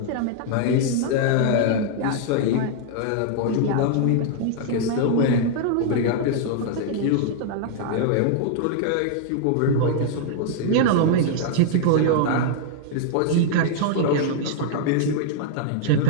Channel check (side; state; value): both; different; correlation -0.01